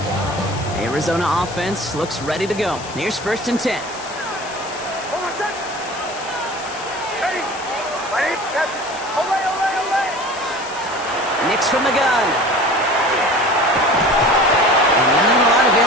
Arizona offense looks ready to go. Here's 1st and 10. Nix from the gun. And not a lot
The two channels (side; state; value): left; noise; hiss, 15 dB below the sound